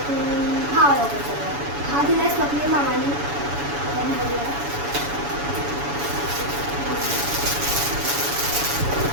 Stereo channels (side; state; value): left; late; 7.0 ms